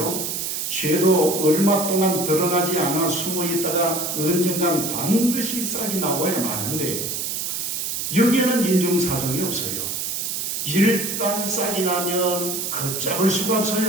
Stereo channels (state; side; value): noise; right; hiss, 3 dB below the sound